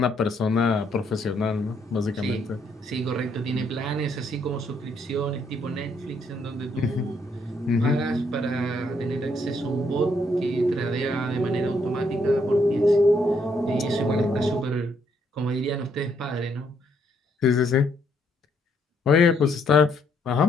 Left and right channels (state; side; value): normal; both; correlation 0.72